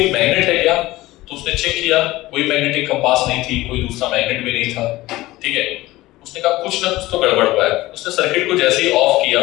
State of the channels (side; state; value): right; quieter; 18.0 dB